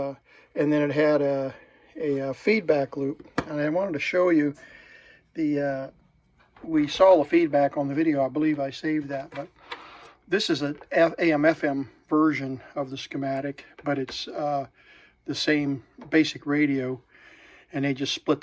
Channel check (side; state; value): both; identical; correlation 1.00